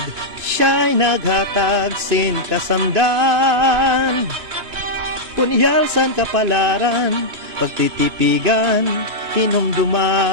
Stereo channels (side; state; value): left; late; 2.9 ms